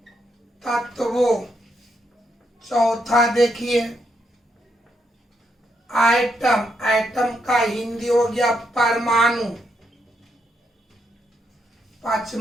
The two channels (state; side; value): normal; both; correlation 0.79